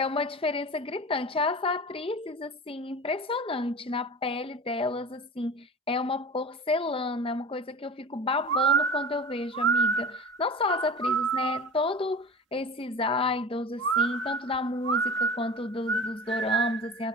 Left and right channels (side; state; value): both; normal; correlation 0.35